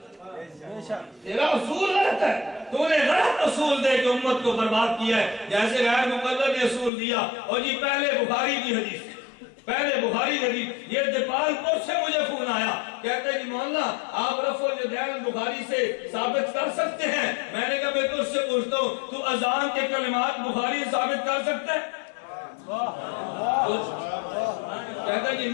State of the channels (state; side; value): drops out; right; at 6.9 s